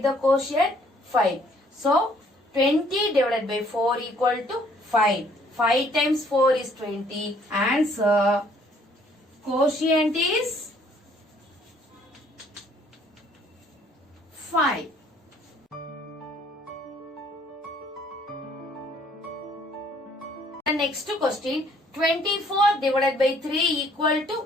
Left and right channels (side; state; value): both; normal; correlation 0.62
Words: the quotient 5. So 20 divided by 4 equal to 5. 5 times 4 is 20. Answer. Quotient is 5. The next question, 24 divided by 3 equal